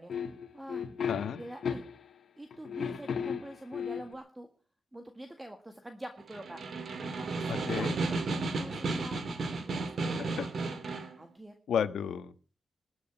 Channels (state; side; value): normal; both; correlation 0.77